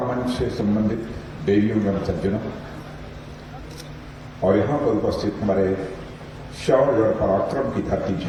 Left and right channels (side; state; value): both; identical; correlation 1.00